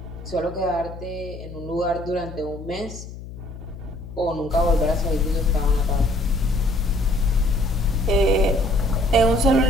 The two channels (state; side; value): noise; left; hum, 13 dB below the sound